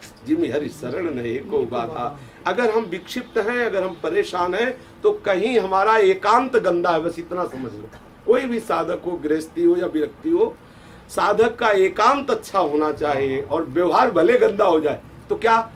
जिम हरि शरण नहीं को बाधा। अगर हम विक्षिप्त हैं, अगर हम परेशान हैं, तो कहीं हमारा एकांत गंदा है, बस इतना समझ लो। कोई भी साधक हो, गृहस्थी हो या विरक्ति हो, साधक का एकांत अच्छा होना चाहिए। और व्यवहार भले गंदा हो जाए तो क्या,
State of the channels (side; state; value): both; identical; correlation 1.00